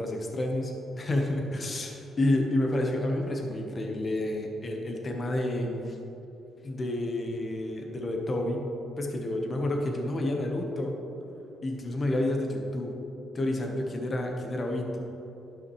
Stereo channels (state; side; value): normal; both; correlation 0.85